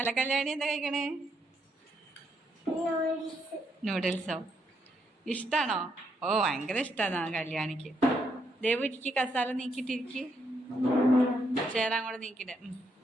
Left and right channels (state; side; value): normal; both; correlation 0.76